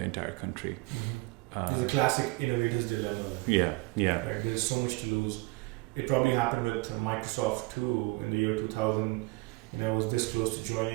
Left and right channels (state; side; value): quieter; left; 24.3 dB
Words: entire country? There's a classic innovator's dilemma. Yeah. Right? There's so much to lose. It probably happened with Microsoft too in the year 2000. I was this close to